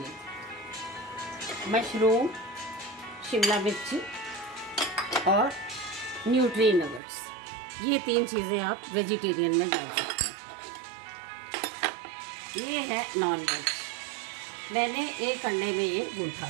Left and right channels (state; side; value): drops out; left; at 7.0 s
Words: मशरूम, शिमला मिर्ची और न्यूट्री नगेट्स, ये 3 चीज़ें आप वेजिटेरियन में डाल सकते हैं। ये है नॉन वेज, मैंने 1 अंडे में ये गूंथा